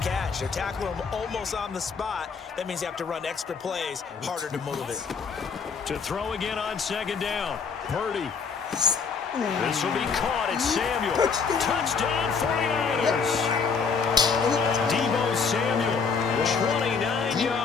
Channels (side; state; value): right; quieter; 5.5 dB